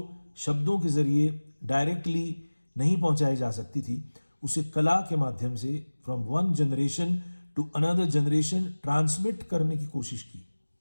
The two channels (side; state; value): both; inverted; correlation -1.00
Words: शब्दों के ज़रिए डायरेक्टली नहीं पहुंचाई जा सकती थी, उसे कला के माध्यम से from one generation to another generation transmit करने की कोशिश की।